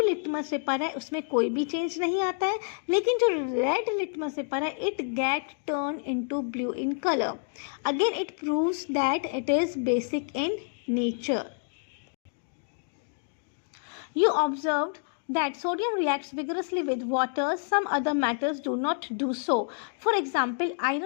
लिटमस पेपर है उसमें कोई भी चेंज नहीं आता है, लेकिन जो रेड लिटमस पेपर है it get turn into blue in colour. Again it proves that it is basic in nature। You observed that sodium reacts vigorously with water, some other metals do not do so. For example,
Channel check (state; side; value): silent; right; 59 dB below the other